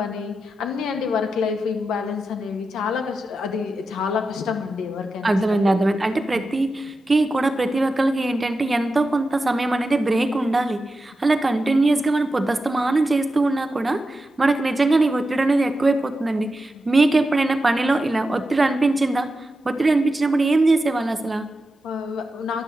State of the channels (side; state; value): both; normal; correlation 0.90